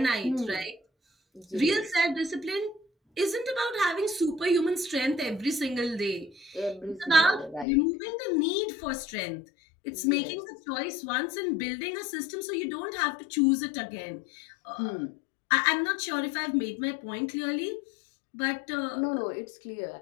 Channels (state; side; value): drops out; right; at 7.7 s